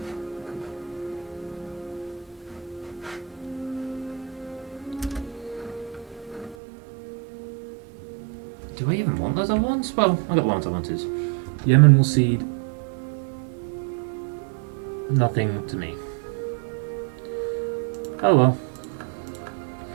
Do I even want those other ones? Well, I got the ones I wanted. Yemen will cede nothing to me. Oh well.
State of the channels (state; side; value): drops out; left; at 6.6 s